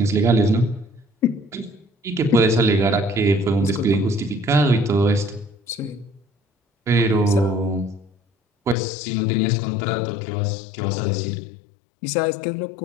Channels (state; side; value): drops out; right; at 8.8 s